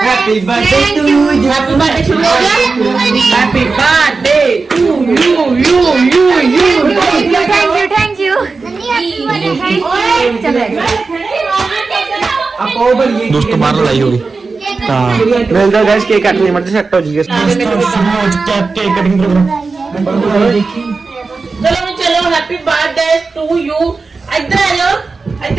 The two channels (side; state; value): left; quieter; 4.2 dB